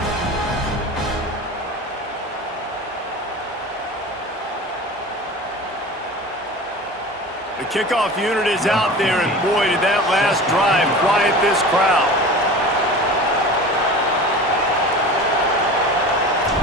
The kickoff unit is out there, and boy, did that last drive quiet this crowd.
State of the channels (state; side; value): normal; both; correlation 0.35